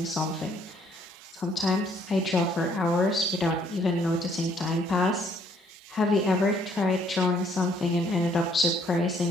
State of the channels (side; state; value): both; normal; correlation 0.65